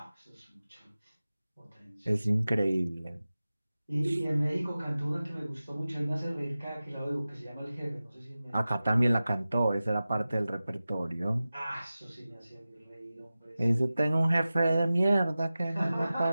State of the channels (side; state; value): both; inverted; correlation -0.96